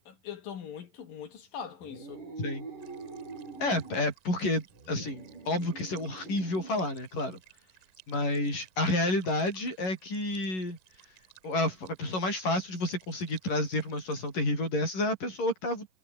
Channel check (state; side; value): late; right; 11 ms